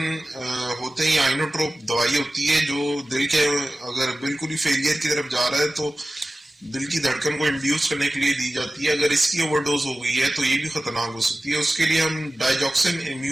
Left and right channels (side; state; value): both; normal; correlation 0.96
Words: ہوتے ہیں یا آئنوٹروپ دوائی ہوتی ہے جو دل کے اگر بالکل ہی فیلئر کی طرف جا رہا ہے تو دل کی دھڑکن کو انڈیوس کرنے کے لیے دی جاتی ہے. اگر اس کی اوور ڈوز ہو گئی ہے تو یہ بھی خطرناک ہو سکتی ہے. اس کے لیے ہم ڈائیجوکسن